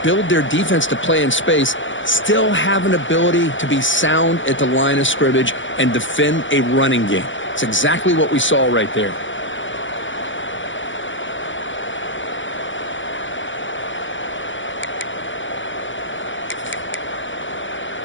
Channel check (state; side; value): late; right; 0.56 ms